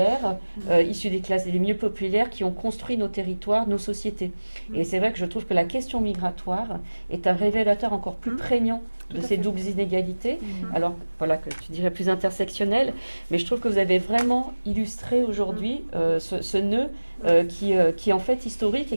issues des classes les mieux populaires, qui ont construit nos territoires, nos sociétés. Et c'est vrai que je trouve que la question migratoire est un révélateur encore plus prégnant de ces doubles inégalités, alors voilà, que tu dirais plus intersectionnelles, mais je trouve que vous avez vraiment illustré aujourd'hui ce nœud qui est en fait historique et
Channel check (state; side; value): inverted; both; correlation -1.00